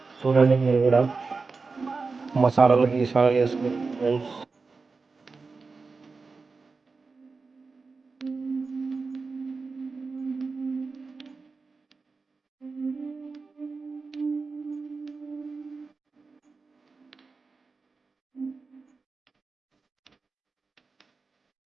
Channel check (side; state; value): left; quieter; 4.3 dB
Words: చూడండి, మీరు కూడా మసాలాలు గీసాలు వేసుకుని ఫ్రెండ్స్.